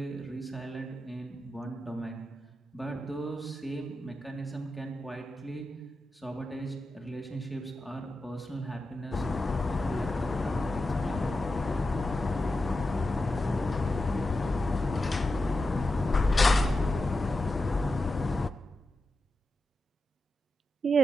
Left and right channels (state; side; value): normal; both; correlation 0.90